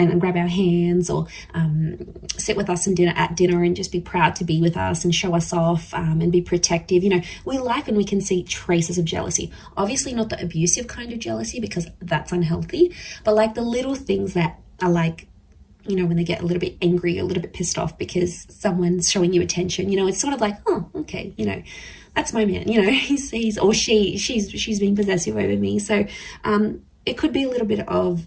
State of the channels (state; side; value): identical; both; correlation 1.00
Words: grab our hands, or sit with us at dinner and just be proud to be with us and show us off, and be protective. You know, we like when we can see traces of jealousy. Obviously not the abusive kind of jealousy, because that's unhealthy, but like the little things that are like, you know, when they get a little bit angry, a little bit pissed off because someone's showing you attention, you know, it's sort of like, oh, okay, you know, that's my man, you know, he's or she's being possessive over me. So it could be a little bit of